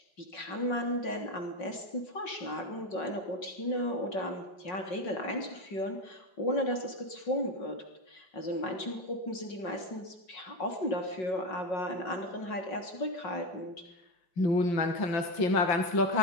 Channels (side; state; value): right; late; 5.4 ms